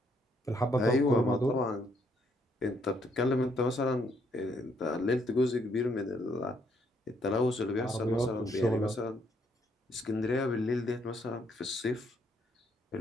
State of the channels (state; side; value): normal; both; correlation 0.71